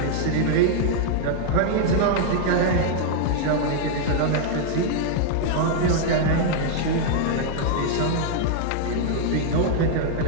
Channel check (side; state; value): both; different; correlation -0.01